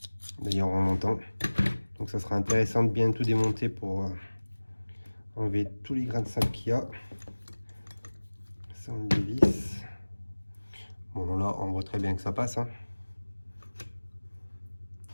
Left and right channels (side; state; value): both; inverted; correlation -1.00